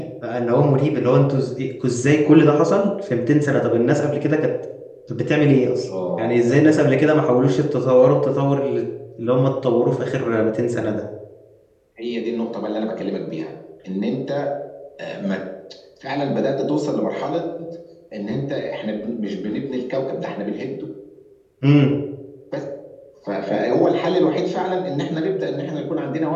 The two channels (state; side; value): identical; both; correlation 1.00